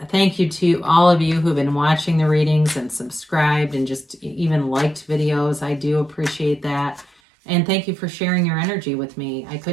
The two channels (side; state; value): left; drops out; at 7.1 s